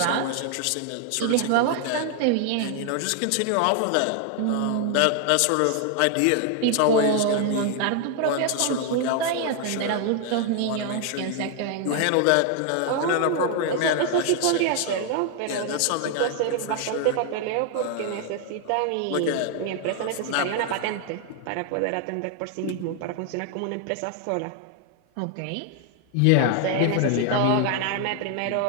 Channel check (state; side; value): different; both; correlation 0.00